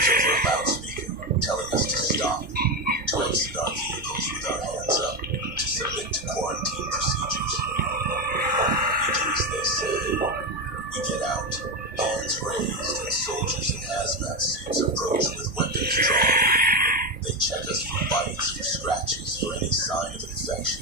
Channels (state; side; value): normal; both; correlation 0.13